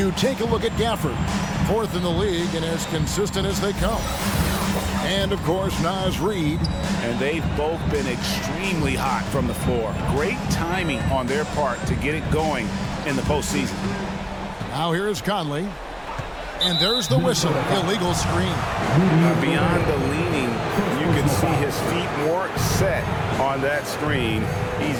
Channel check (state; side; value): identical; both; correlation 1.00